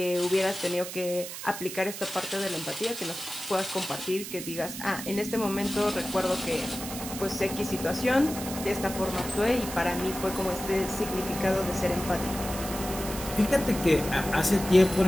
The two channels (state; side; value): noise; right; hiss, 9 dB below the sound